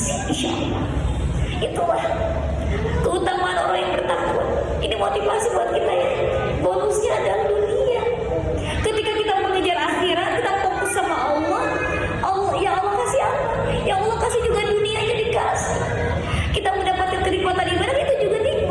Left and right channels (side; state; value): both; identical; correlation 1.00